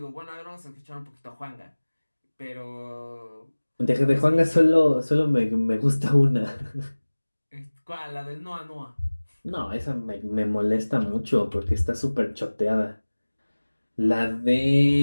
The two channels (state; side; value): inverted; both; correlation -1.00